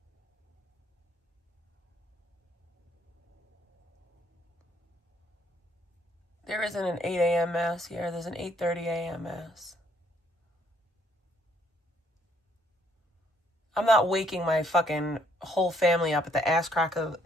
There isn't an 8 a.m. mass here. There's an 8:30 a.m. mass. I'm not waking my fucking whole family up at the ass crack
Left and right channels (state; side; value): normal; both; correlation 0.67